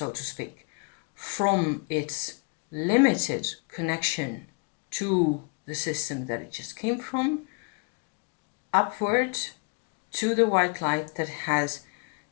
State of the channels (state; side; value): quieter; right; 35.0 dB